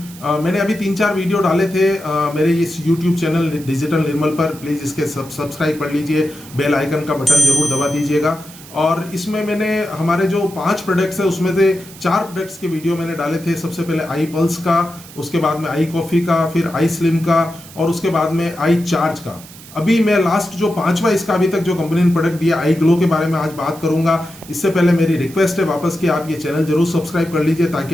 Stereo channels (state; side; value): noise; right; hiss, 19 dB below the sound